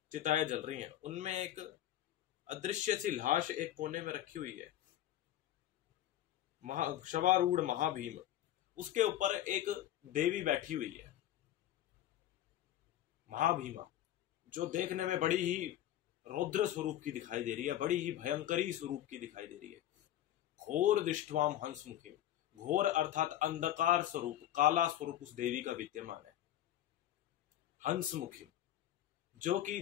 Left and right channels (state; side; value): quieter; right; 12.6 dB